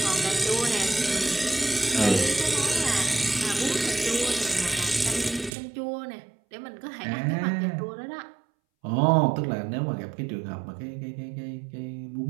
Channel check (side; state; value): left; drops out; at 5.5 s